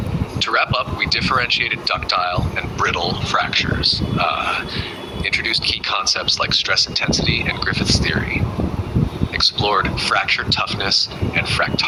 To wrap up, we differentiated ductile and brittle fractures, introduced key concepts like stress intensity and Griffith's theory, explored fracture toughness and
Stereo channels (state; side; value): identical; both; correlation 1.00